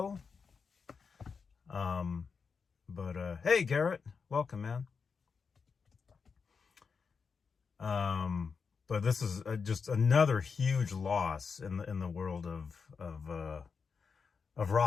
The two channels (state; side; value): quieter; right; 5.5 dB